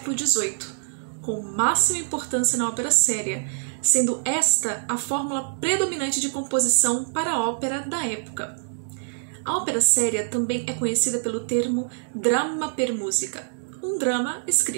XVIII, com máxima importância na ópera séria, sendo esta a fórmula predominante de composição para a ópera da época. A ópera séria também é conhecida pelo termo dramma per musica, um drama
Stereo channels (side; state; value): left; silent; digital silence